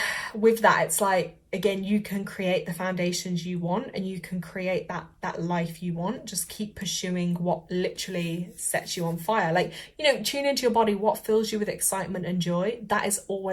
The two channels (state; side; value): identical; both; correlation 1.00